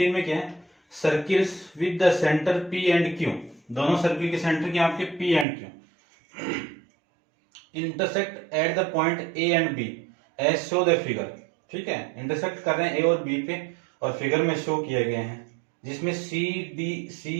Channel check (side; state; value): left; drops out; at 5.5 s